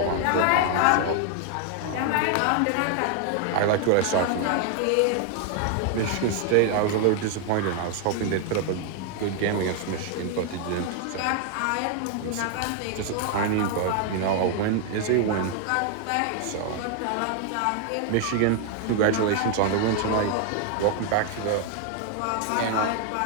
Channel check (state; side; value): different; both; correlation 0.00